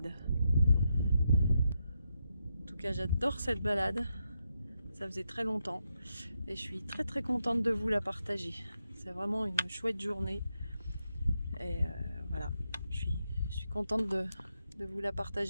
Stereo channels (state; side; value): inverted; both; correlation -0.84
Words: En tout cas j'adore cette balade, ça faisait très longtemps. Et je suis très très contente de vous la partager. C'est vraiment une chouette journée. Et voilà, je suis contente de vous la